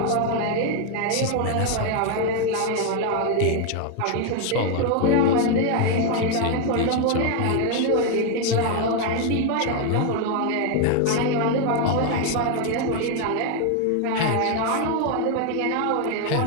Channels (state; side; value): different; both; correlation 0.01